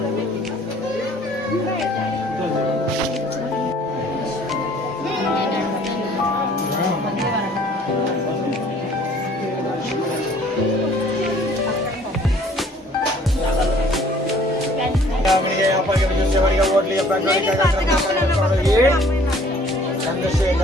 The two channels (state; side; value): normal; both; correlation 0.56